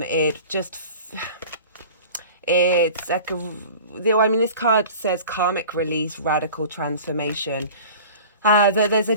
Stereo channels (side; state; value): both; inverted; correlation -0.40